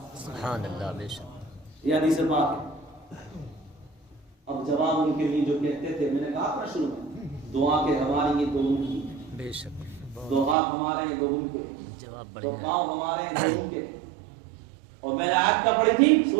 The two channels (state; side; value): drops out; left; at 10.6 s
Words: سبحان اللہ. بے شک. یہ حدیث پاک ہے. اب جواب ان کے لیے جو کہتے تھے، میں نے کہا تھا شروع میں، دعا کے ہماری یہ دو ان کی، بے شک. دو ہاتھ ہمارے ہیں دو ان کے، جواب دو بڑھیا. پاؤں ہمارے ہیں دو ان کے. اور میں نے آیت کا پڑھی تھی